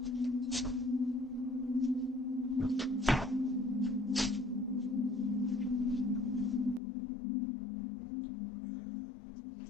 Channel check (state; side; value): drops out; right; at 6.8 s